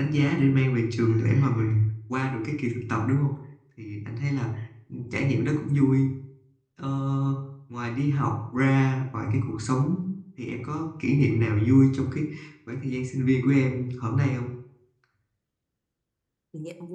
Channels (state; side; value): identical; both; correlation 1.00